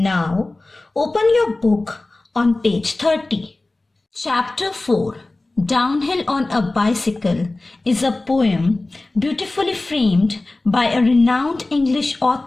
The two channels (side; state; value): right; quieter; 3.0 dB